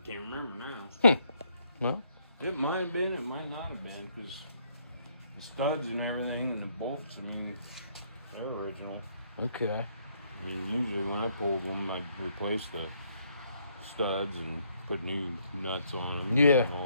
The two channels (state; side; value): inverted; both; correlation -0.70